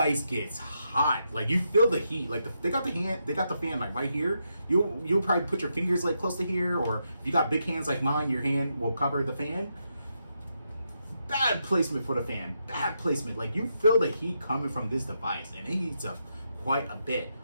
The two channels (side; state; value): both; inverted; correlation -0.82